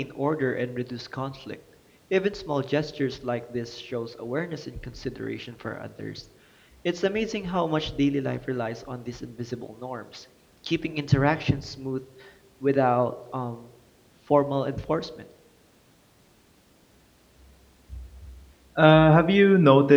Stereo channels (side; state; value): both; identical; correlation 1.00